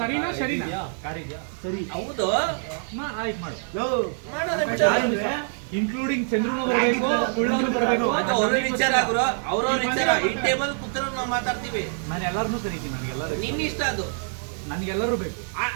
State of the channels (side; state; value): left; silent; 56 dB below the other